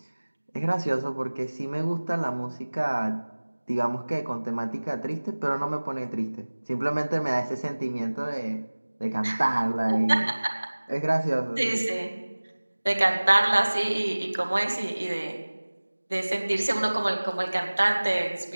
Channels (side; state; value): both; inverted; correlation -1.00